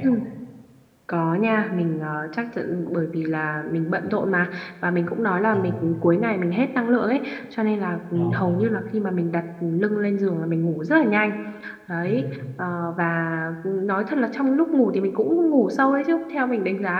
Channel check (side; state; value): both; identical; correlation 1.00